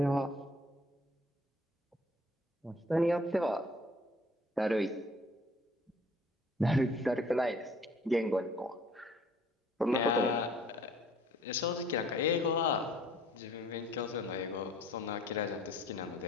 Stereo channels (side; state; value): both; normal; correlation 0.55